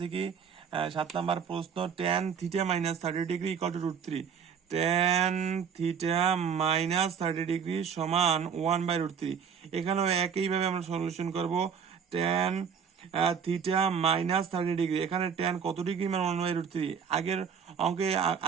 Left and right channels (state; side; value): quieter; left; 7.0 dB